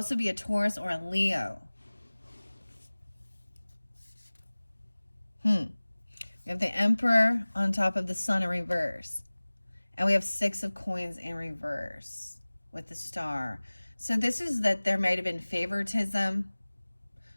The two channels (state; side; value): inverted; both; correlation -1.00